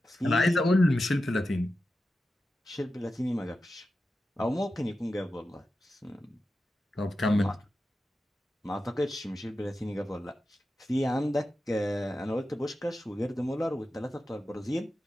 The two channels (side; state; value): both; normal; correlation 0.91